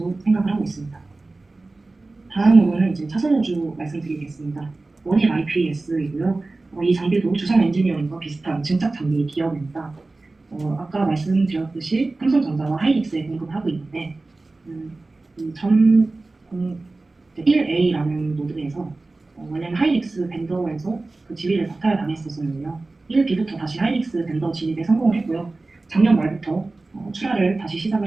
생각을 하고 있습니다. 다음으로는 이제 차선 우주 말씀드리겠습니다. 원일 IPS이고요. 이 장비도 주성 엔지니어링과 비슷한 증착 장비 기업입니다. 아까 말씀드렸듯이 삼성전자와 하이닉스에 공급하고 있는데 이 1A라는 모드에서 원래는 하이닉스 벤더에서 그 지위를 박탈 당했었는데요. 1B부터 다시 하이닉스 벤더 진입에 성공을 했고요. 작년 말부터 출하를 다시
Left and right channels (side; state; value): left; quieter; 3.3 dB